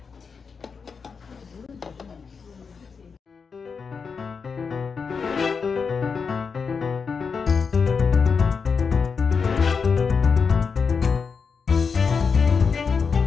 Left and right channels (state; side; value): quieter; right; 5.5 dB